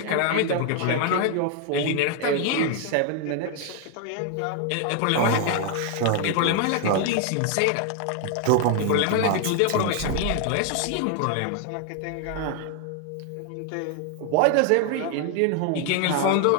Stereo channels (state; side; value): different; both; correlation 0.00